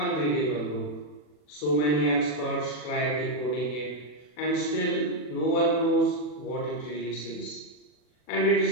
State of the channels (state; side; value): late; right; 40 ms